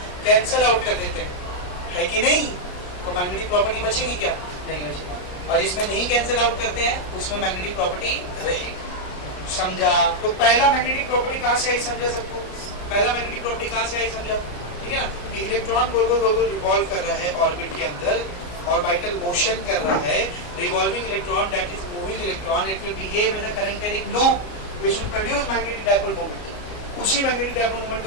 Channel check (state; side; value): late; right; 34 ms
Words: कैंसिल आउट कर देते है कि नहीं। तो मैग्नेटिक प्रॉपर्टी बचेगी क्या, नहीं बचेगी। और जिसमें नहीं कैंसिल आउट करते हैं उसमें मैग्नेटिक प्रॉपर्टी रहेगी। समझा। तो पहला मैग्नेटिक प्रॉपर्टी कहां से आई, समझा सबको, पहला मैग्नेटिक प्रॉपर्टी कहां से आई समझा, ठीक है ना। इलेक्ट्रॉन गोल गोल गोल रिवॉल्व कर रहा है ऑर्बिट के अंदर, ऑर्बिटल मोशन कर रहा है, revolving electron that is moving electron, it will behave as a current carrying loop which will produce magnetic dipole moment. उसी मैग्नेटिक डाइपोल मोमेंट